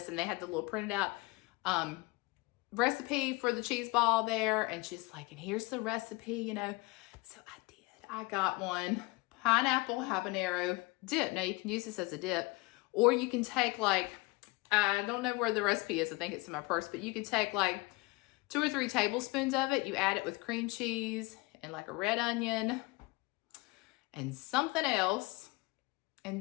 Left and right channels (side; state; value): right; quieter; 24.7 dB